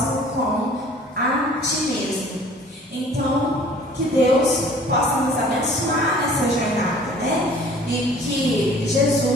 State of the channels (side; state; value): both; normal; correlation 0.51